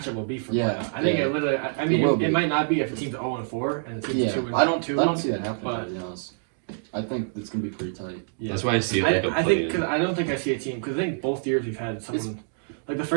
will be for Yeah, playoff. I think yeah. it literally. I mean, will be. it might not be if the team's 0-4 and the team's yeah. 2-2. I don't see that happening. but- To be honest, I think it's gonna be pretty tight. Yeah. That's why I see it like a I think play-in. because I don't think I see a team because I think both years we've had someone like the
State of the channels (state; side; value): silent; left; digital silence